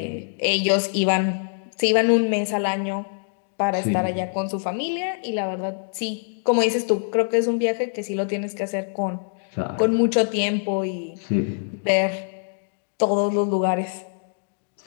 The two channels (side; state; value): right; silent; digital silence